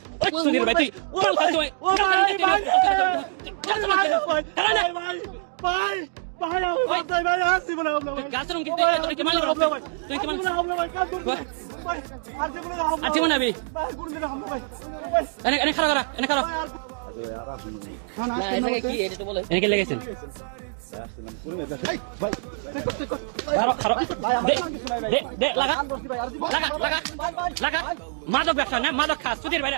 সুধীর ভাই তুই লেগেছেন মাদক ব্যবসা না মাদক খাস সুধীর ভাই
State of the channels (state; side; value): silent; left; digital silence